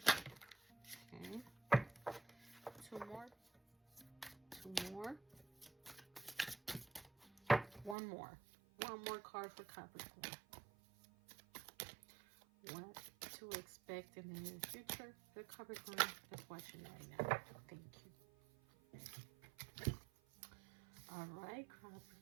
Okay. 2 more. 2 more. 1 more. 1 more card for Capricorn. What to expect in the near future for Capricorn that's watching right now. Thank you. All right,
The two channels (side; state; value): left; drops out; at 8.0 s